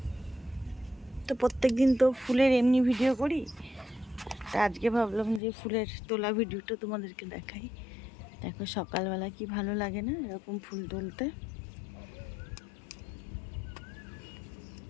তো প্রত্যেক দিন তো ফুলের এমনি ভিডিও করি, তা আজকে ভাবলাম যে ফুলের তোলা ভিডিওটা তোমাদেরকে দেখাই। দেখো সকালবেলা কি ভালো লাগে না এরকম ফুল তুলতে।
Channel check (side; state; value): right; drops out; at 5.4 s